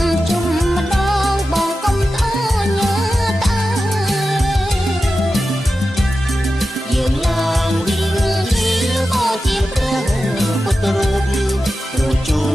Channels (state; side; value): normal; both; correlation 0.92